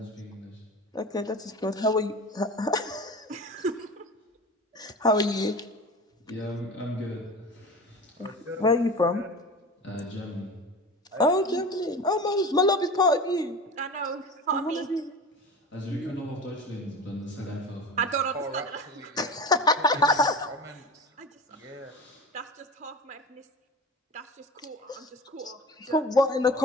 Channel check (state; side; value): normal; both; correlation 0.32